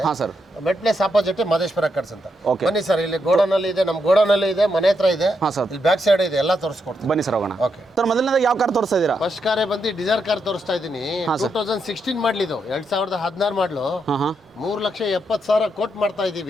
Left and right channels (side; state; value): both; normal; correlation 0.81